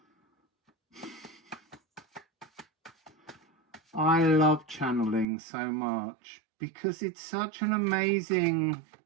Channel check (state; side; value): drops out; left; at 5.2 s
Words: I love channeling so much because it's such an amazing,